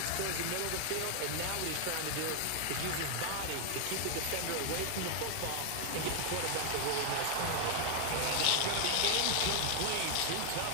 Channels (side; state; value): both; different; correlation 0.00